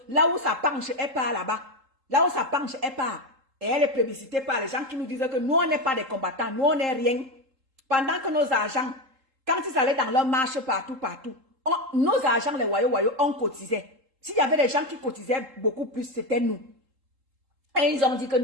Là où ça penche, elle part là-bas. Là où ça penche, elle part. Et elle est plébiscitée par les gens qui nous disent que nous on n'est pas des combattants. Nous on n'est rien. Pendant que nos agents, quand ils allaient dans leur marche partout, nos agents, les Wayo, on cotisait. S'il y avait des gens qui cotisaient beaucoup plus, c'était nous. Et ils ont dit que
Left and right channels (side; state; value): left; late; 3.8 ms